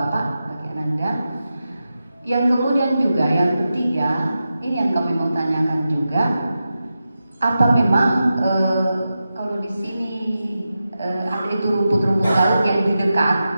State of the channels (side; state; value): both; inverted; correlation -0.91